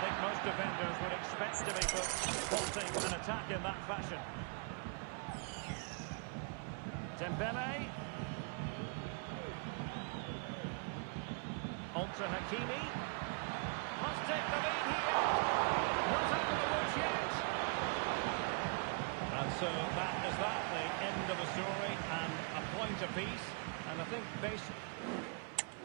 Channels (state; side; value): quieter; left; 39.9 dB